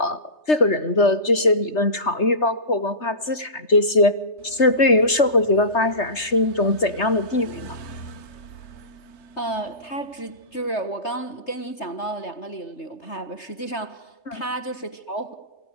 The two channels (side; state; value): right; late; 3.3 ms